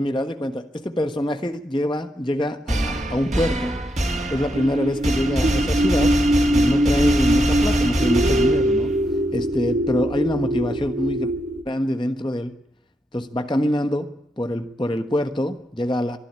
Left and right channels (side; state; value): both; normal; correlation 0.82